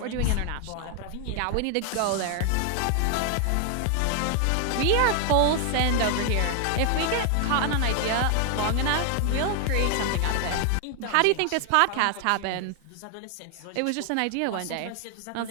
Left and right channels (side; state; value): both; different; correlation 0.00